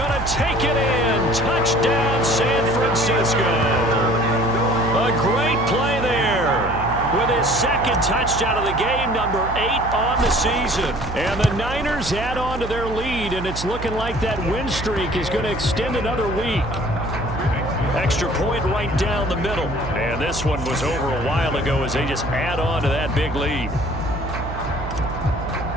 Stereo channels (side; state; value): right; noise; hum, 9 dB below the sound